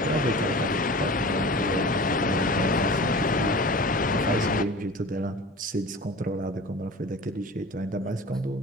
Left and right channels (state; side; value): normal; both; correlation 0.38